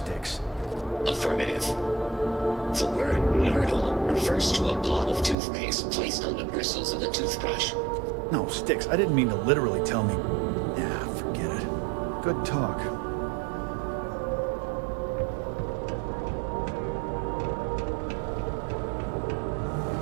Affirmative. The word myrtle refers to a blob of toothpaste placed on the bristles of a toothbrush. No, Styx, I didn't mean to literally tell me. Yeah, forget it. Good talk.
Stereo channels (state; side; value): drops out; left; at 5.4 s